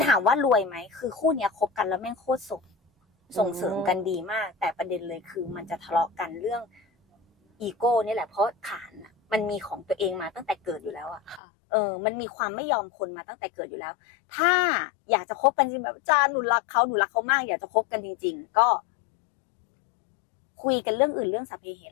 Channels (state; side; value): drops out; right; at 11.4 s